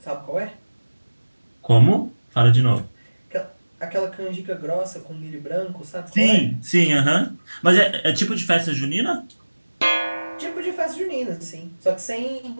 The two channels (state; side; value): inverted; both; correlation -1.00